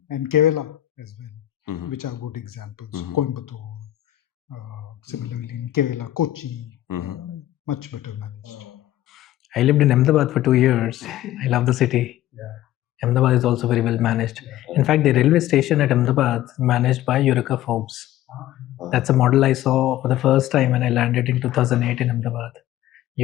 and Kerala as well, which are good examples. Coimbatore, similarly in Kerala, Kochi, much better managed. I lived in Ahmedabad for 2 years. I love the city. Ahmedabad is also very well managed. In fact, the railway station at Ahmedabad is managed by Eureka Forbes. That's a model I saw for the first time when I landed in 2008 in Ahmedabad.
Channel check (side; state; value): right; quieter; 13.8 dB